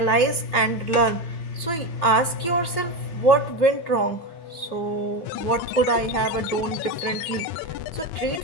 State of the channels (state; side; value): late; right; 3.0 ms